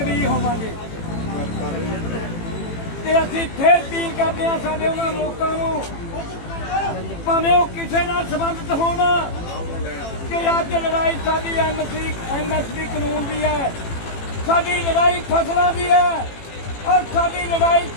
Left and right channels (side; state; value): right; late; 18 ms